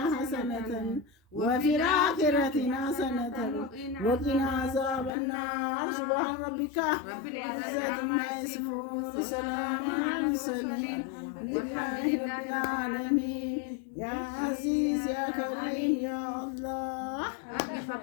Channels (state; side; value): drops out; right; at 5.1 s